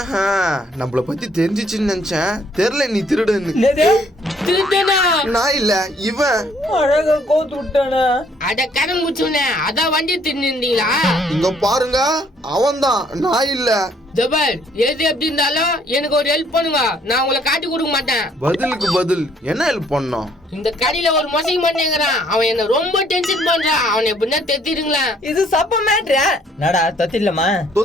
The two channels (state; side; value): normal; both; correlation 0.64